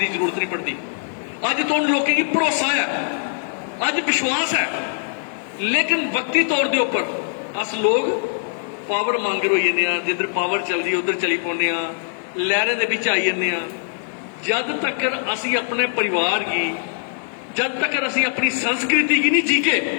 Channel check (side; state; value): right; silent; 56 dB below the other